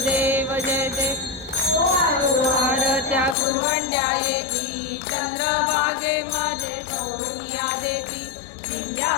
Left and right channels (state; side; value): drops out; right; at 3.4 s